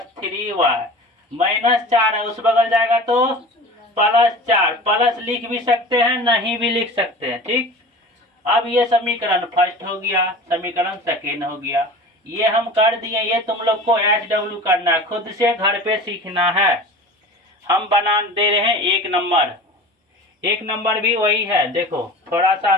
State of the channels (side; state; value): both; normal; correlation 0.37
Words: 3y -4 है, उस बगल जाएगा तो +4। प्लस लिख भी सकते हैं, नहीं भी लिख सकते हैं, ठीक। अब ये समीकरण फर्स्ट हो गया, समीकरण सेकेंड हो गया, ये हम कर दिए। ये तुम लोग को HW करना है, खुद से घर पे सीखना है। हम बना दे रहे हैं 1 नंबर, 1 नंबर भी वही है, देखो थोड़ा सा